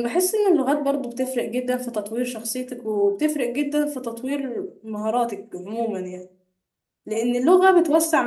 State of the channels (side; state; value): both; identical; correlation 1.00